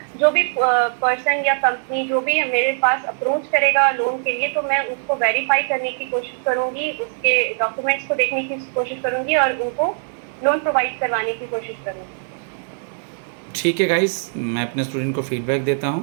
जो भी पर्सन या कंपनी जो भी मेरे पास अप्रोच करेगा लोन के लिए तो मैं उसको वेरीफाई करने की कोशिश करूंगी, उसके डॉक्यूमेंट्स को देखने की कोशिश करूंगी और उनको लोन प्रोवाइड करवाने की कोशिश करूंगी। ठीक है गाइस, मैं अपने स्टूडेंट को फीडबैक देता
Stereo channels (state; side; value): silent; left; digital silence